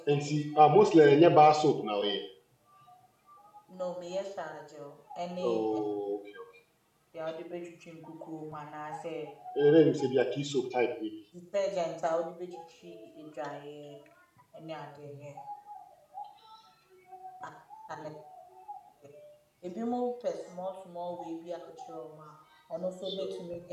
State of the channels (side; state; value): both; identical; correlation 1.00